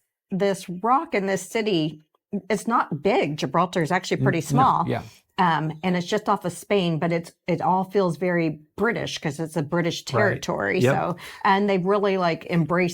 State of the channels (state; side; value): identical; both; correlation 1.00